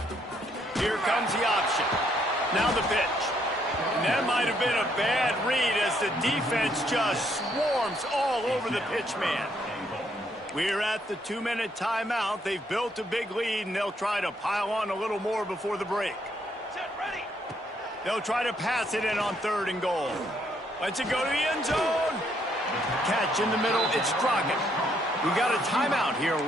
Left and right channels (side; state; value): both; normal; correlation 0.71